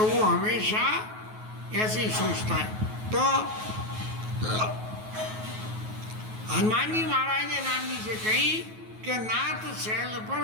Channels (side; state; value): left; late; 9.3 ms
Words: वो हमेशा ऐसे ही सोचता है। तो हनुमान जी महाराज ने राम जी से कही कि नाथ शैल पर